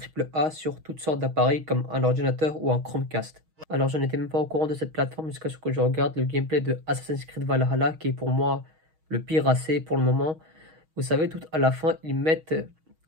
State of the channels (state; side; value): late; left; 6.3 ms